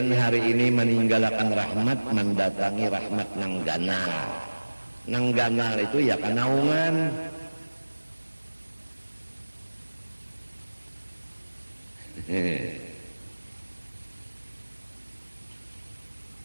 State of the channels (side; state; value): both; inverted; correlation -1.00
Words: hari ini meninggalkan rahmat mendatangi rahmat nang ganal. Nang ganal itu ya kanaungan.